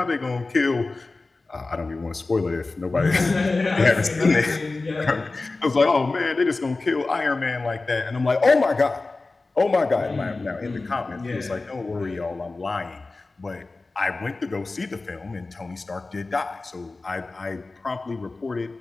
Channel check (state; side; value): quieter; right; 3.5 dB